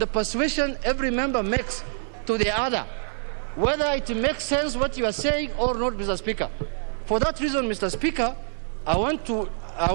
persuasion every member makes to the other, whether it makes sense what you are saying or not, Mr. Speaker. For that reason, Mr. Speaker, I want to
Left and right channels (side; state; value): left; silent; digital silence